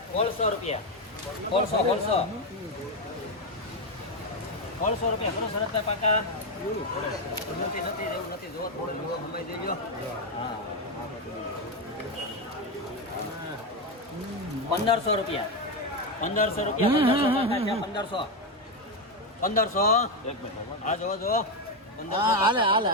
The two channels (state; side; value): normal; both; correlation 0.08